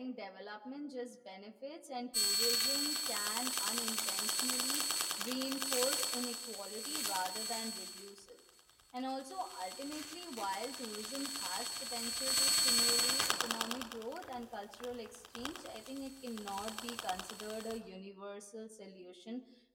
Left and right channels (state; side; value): identical; both; correlation 1.00